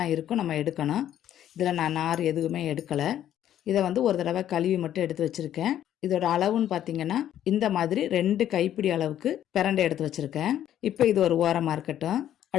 இருக்கும், நம்ம எடுக்கணும். இதில் நான் நார் எதுவுமே எடுக்கலை. இதை ஒரு தடவை கழுவி மட்டும் எடுத்து வச்சுருக்கேன். இதோட அளவுன்னு பார்த்தீங்கன்னா இந்த மாதிரி 2 கைப்பிடி அளவுக்கு பிரண்டை எடுத்து வச்சுருக்கேன். இப்போ இது ஒரு ஓரமாக இருக்கட்டும்.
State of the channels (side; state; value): right; quieter; 11.2 dB